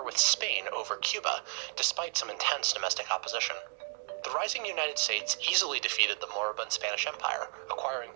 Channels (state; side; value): silent; left; digital silence